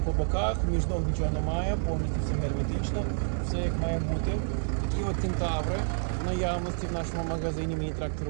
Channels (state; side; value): silent; left; 59 dB below the other